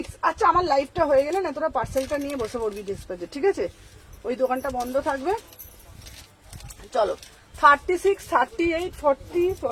আচ্ছা আমার লাইফটা হয়ে গেলে না তোরা পার্সেলটা নিয়ে বসে পড়বি ডিসপ্লেতে। ঠিক আছে ওই দোকানটা বন্ধ থাকবে। চলো 36, 38, 40,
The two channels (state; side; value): identical; both; correlation 1.00